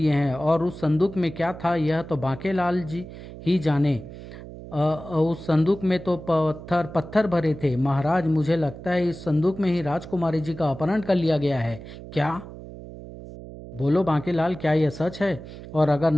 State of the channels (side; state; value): right; noise; hum, 14 dB below the sound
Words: हैं और उस संदूक में क्या था यह तो बांकेलाल जी ही जाने। उस संदूक में तो पत्थर भरे थे। महाराज, मुझे लगता है इस संदूक में ही राजकुमारी जी का अपहरण कर लिया गया है। क्या? बोलो बांकेलाल, क्या यह सच है? और अगर